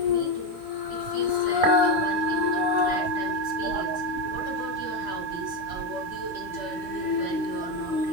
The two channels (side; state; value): left; late; 3.1 ms